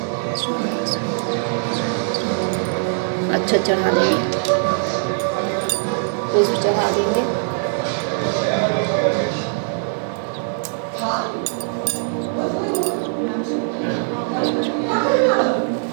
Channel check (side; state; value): left; silent; 65 dB below the other